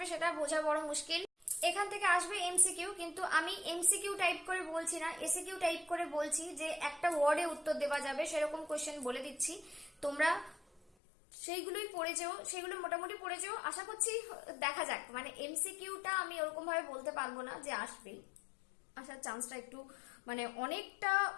সেটা বোঝা বড় মুশকিল। এখান থেকে আসবে এমসিকিউ, কিন্তু আমি এমসিকিউ টাইপ করে বলছি না, এসিকিউ টাইপ করে বলছি যে একটা ওয়ার্ডে উত্তর দেওয়া যাবে সেরকম কোশ্চেন বলে দিচ্ছি। তোমরা সেইগুলোই পড়ে যেও, সেগুলো মোটামুটি পড়ে যেও। আশা করছি দেখা যাক, মানে এমসিকিউটা আমি ওরকম ভাবে বলতে পারবো না যে আসবেই, আসার চান্সটা একটু মানে অনেকটা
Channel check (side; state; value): right; drops out; at 10.9 s